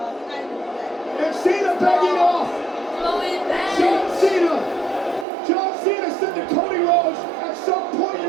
Cena begging off. John Cena said to Cody Rhodes, at some point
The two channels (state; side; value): drops out; left; at 5.2 s